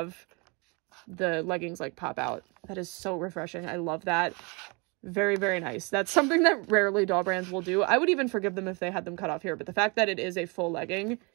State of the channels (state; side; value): quieter; left; 30.0 dB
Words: the leggings like pop out. That is so refreshing. I love that. Very, very nice. That's something that rarely doll brands will do. I would even forgive them if they had them cut off here, but the fact that it is a full legging,